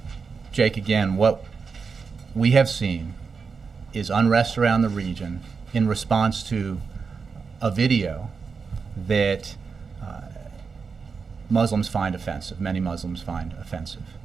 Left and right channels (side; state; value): left; quieter; 5.3 dB